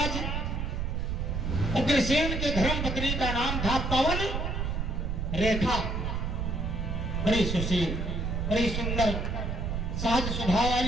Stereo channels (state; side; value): noise; right; rumble, 1 dB below the sound